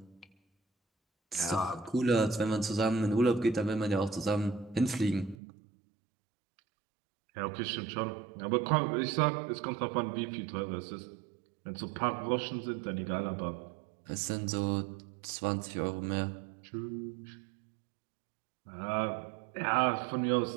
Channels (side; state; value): left; drops out; at 5.4 s